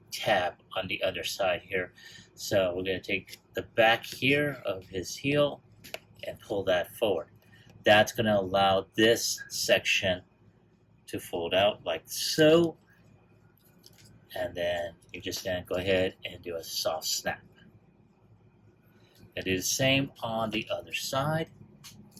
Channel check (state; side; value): identical; both; correlation 1.00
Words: tab on the other side here. So we're going to take the back here of his heel and pull that forward. That's going to allow this section to fold out like so, and then you're just going to go ahead and do a soft snap. And do the same on the other side.